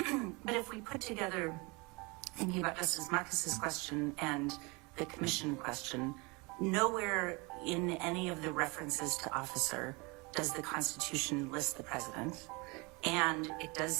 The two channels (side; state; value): left; quieter; 27.3 dB